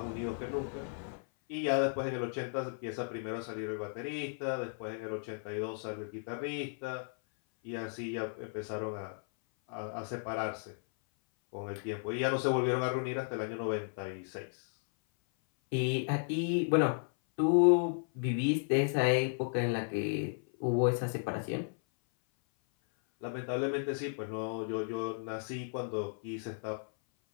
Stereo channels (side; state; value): right; silent; 55 dB below the other